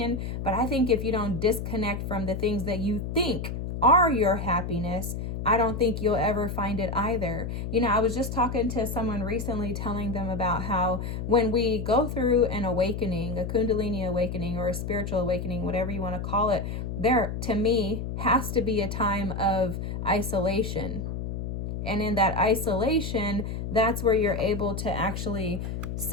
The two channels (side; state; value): left; noise; hum, 5 dB below the sound